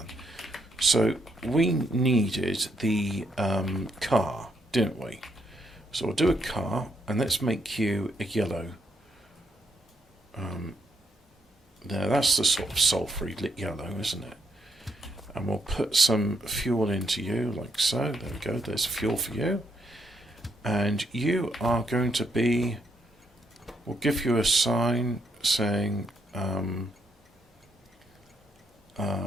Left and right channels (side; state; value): both; normal; correlation 0.74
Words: So we needed the car, didn't we? So we'll do a car, and let's make you a yellow. There, that's the sort of sulphury lit yellow, isn't it? And we'll put some fuel into you, like so. There we go, there's fuel for you. And you are going to be... We'll give you a sign saying...